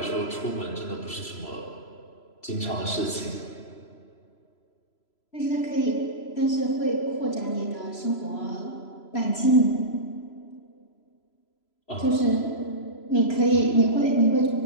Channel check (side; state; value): right; late; 3.0 ms